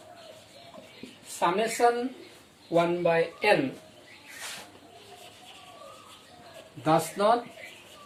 summation 1 by n does not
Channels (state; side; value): identical; both; correlation 1.00